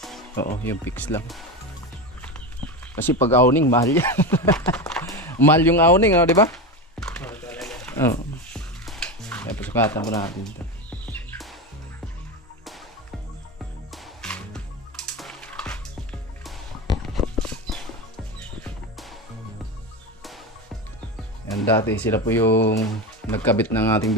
Oo, yung fix lang. Kasi pag awning, mahal yan. Mahal yung awning, di ba? Oo. Kaya pasukatan mo natin ito. Yan, dati sila po yung nagkabit ng ating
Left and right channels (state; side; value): normal; both; correlation 0.20